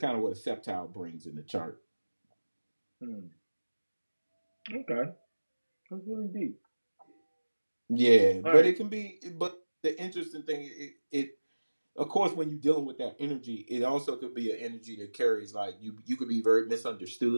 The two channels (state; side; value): inverted; both; correlation -1.00